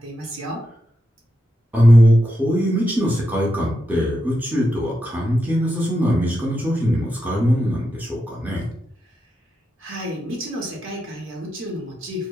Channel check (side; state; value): both; normal; correlation 0.86